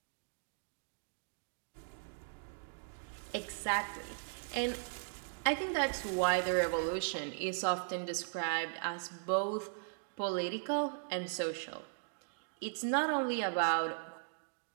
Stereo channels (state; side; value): silent; left; digital silence